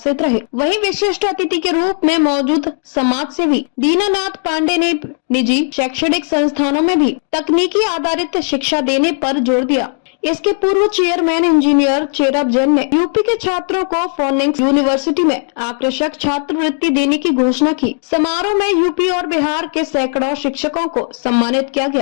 रहे। वहीं विशिष्ट अतिथि के रूप में मौजूद समाज सेवी दीनानाथ पांडे ने निजी शैक्षणिक संस्थानों में भी तकनीकी आधारित शिक्षा देने पर जोर दिया। इसके पूर्व चेयरमैन इंजीनियर चेरब जैन ने यूपी के छात्रों को फोनिक्स यूनिवर्सिटी में आकर्षक छात्रवृत्ति देने की घोषणा की। समारोह में यूपी और बिहार के सैकड़ों शिक्षकों को सम्मानित किया गया।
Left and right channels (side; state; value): right; silent; 69 dB below the other